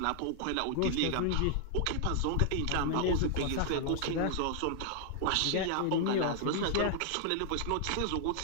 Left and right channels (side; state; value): both; different; correlation 0.00